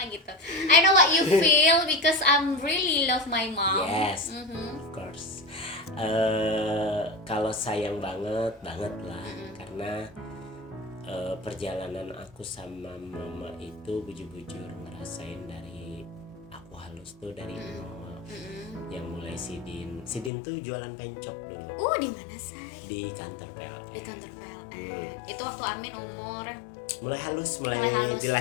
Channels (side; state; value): right; drops out; at 20.3 s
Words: gitu. I know what you feel because I'm really love my mom. Yes, of course. Kalau sayang banget lah karena perjalanan aku sama mama itu bujur-bujur ngerasain dari aku halus tuh dari nol. Yang mulai Sidin tuh jualan pencok dulu. Di mana say? Di kantor PLN. Di kantor PLN. Itu waktu Amin umur mulai halus.